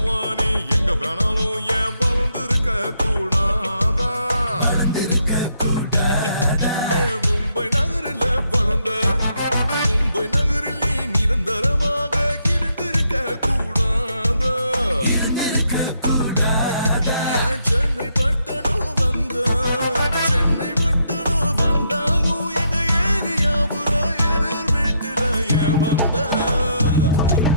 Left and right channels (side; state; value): both; inverted; correlation -0.75